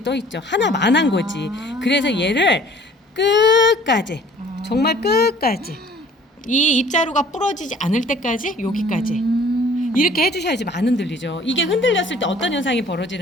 떠 있죠. 하나만 한 거지. 그래서 얘를 끝까지, 정말 끝까지, 이 입자루가 부러지지 않을 때까지 여기까지 이렇게 해주셔야지 안 흔들리죠. 이게 흔들렸을 때 어떤 현상이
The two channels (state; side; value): normal; both; correlation 0.53